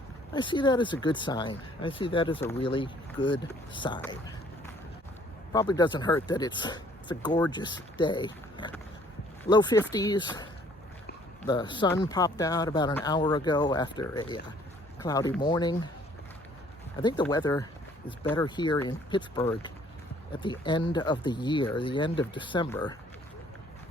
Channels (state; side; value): normal; both; correlation 0.59